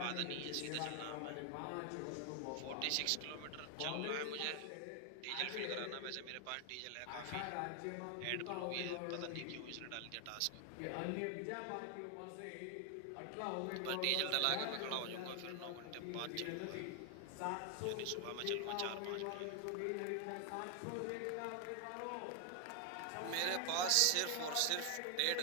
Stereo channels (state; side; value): different; both; correlation 0.00